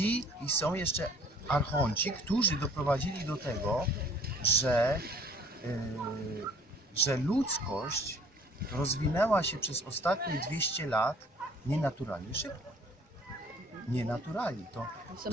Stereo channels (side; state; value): both; normal; correlation 0.55